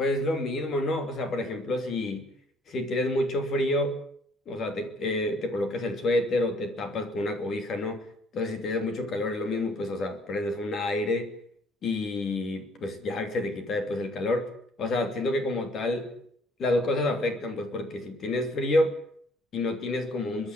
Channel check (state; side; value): normal; both; correlation 0.61